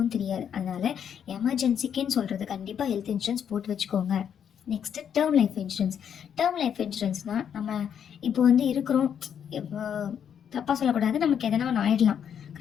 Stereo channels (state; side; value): quieter; right; 8.4 dB